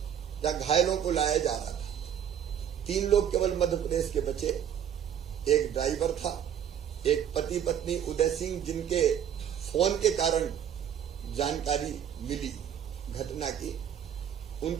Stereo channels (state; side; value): quieter; left; 9.3 dB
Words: जहां घायलों को लाया जा रहा था। 3 लोग केवल मध्य प्रदेश के बचे। एक ड्राइवर था, एक पति पत्नी उदय सिंह जिनके फोन के कारण जानकारी मिली घटना की,